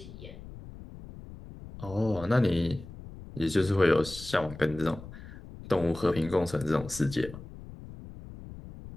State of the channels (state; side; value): noise; left; rumble, 14 dB below the sound